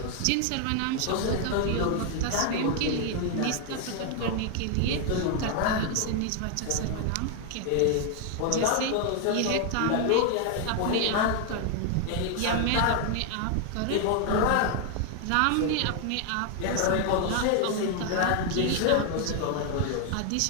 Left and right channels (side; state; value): both; different; correlation 0.00